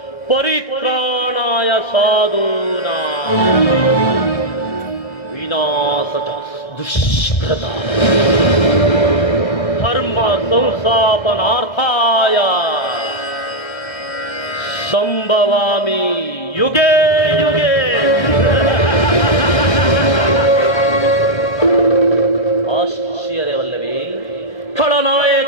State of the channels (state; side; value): late; right; 1.6 ms